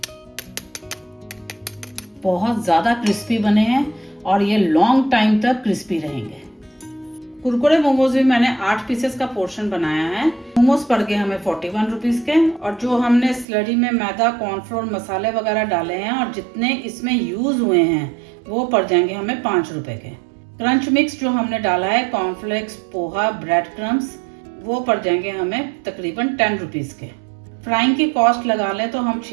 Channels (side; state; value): left; drops out; at 13.5 s